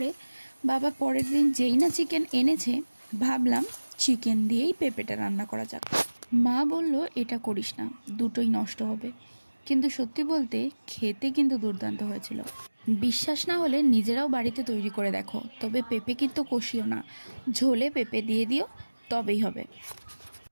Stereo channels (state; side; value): inverted; both; correlation -1.00